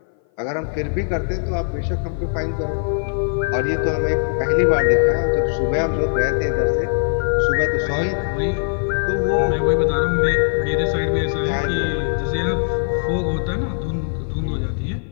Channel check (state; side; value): silent; right; 57 dB below the other